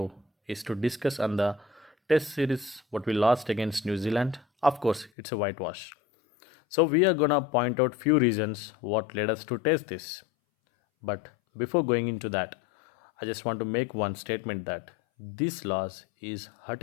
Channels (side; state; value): right; drops out; at 5.1 s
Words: is to discuss on the test series what we lost against New Zealand. Of course, it's a whitewash. So we are gonna point out few reasons what led us to test this. But before going into that, I just want to make one statement that this loss is